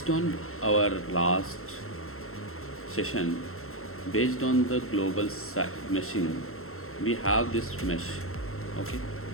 on our last session, based on the global meshing, we have this mesh. Okay,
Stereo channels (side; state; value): right; late; 0.62 ms